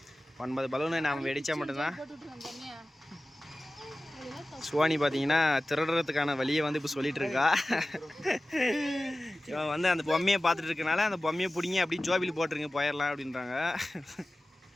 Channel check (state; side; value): normal; both; correlation 0.96